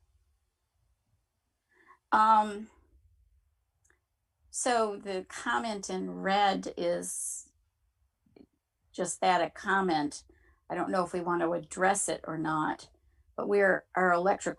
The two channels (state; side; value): identical; both; correlation 1.00